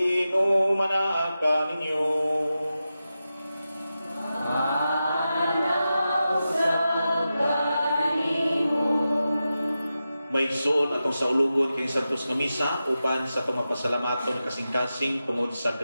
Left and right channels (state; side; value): inverted; both; correlation -0.92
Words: ninyo. May igsoon atong sa ulugon kay Santos nga misa uban sa itong mapasalamaton kasing-kasing tungod sa